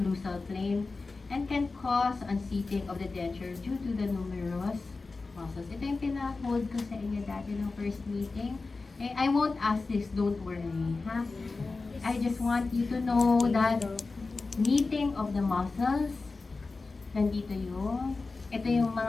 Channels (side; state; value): right; quieter; 3.8 dB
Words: plane and can cause unseating of the denture due to the numerous muscles. Ito yung pina-hold ko sa inyo dati ng first meeting. Eh, I won't ask this, don't worry. Ha? I just want you to know that meeting of the muscles, nandito yung, ito yung